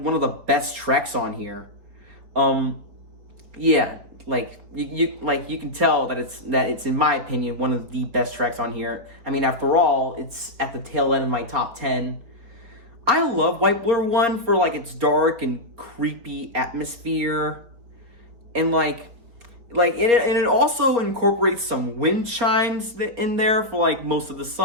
best tracks on here. Yeah, like you can tell that it's in my opinion one of the best tracks on here. I mean, after all, it's at the tail end of my top 10. I love White Blur 1 for like its dark and creepy atmosphere, and it also incorporates some wind chimes in there for like most of the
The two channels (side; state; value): left; late; 4.4 ms